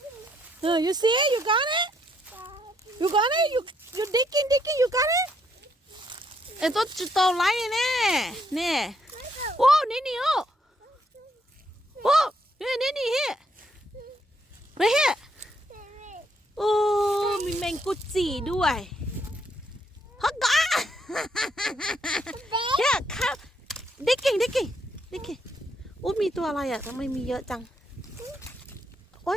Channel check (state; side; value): normal; both; correlation 0.73